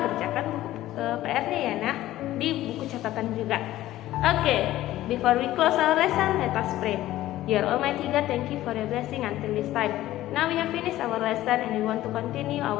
kerjakan buku PR-nya ya nak, di buku catatan juga. Oke, before we close our lesson, let us pray. Dear Almighty God, thank you for your blessing until this time. Now we have finished our lesson and we want to continue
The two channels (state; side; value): quieter; right; 14.9 dB